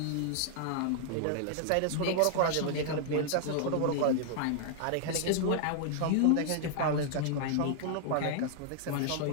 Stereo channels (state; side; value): different; both; correlation -0.01